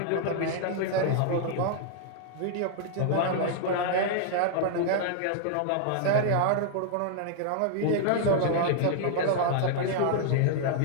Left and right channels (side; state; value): both; different; correlation 0.00